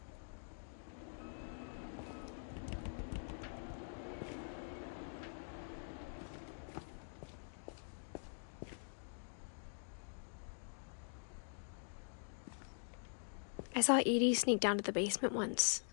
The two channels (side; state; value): right; silent; digital silence